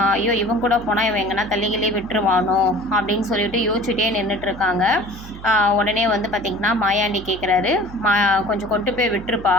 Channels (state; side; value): noise; right; hum, 14 dB below the sound